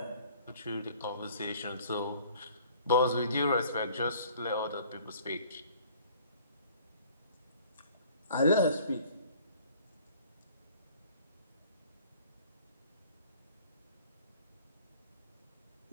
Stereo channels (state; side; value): inverted; both; correlation -0.53